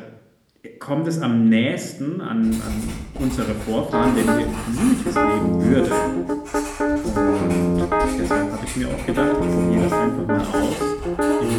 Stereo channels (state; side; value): identical; both; correlation 1.00